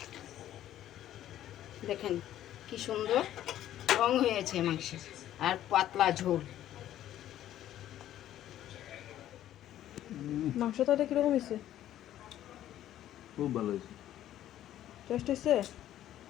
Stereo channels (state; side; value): quieter; right; 12.4 dB